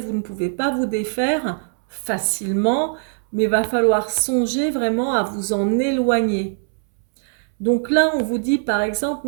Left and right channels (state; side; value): silent; left; 65 dB below the other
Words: ne pouvez pas vous défaire facilement, mais il va falloir songer vraiment à vous en éloigner. Donc là, on vous dit, par exemple,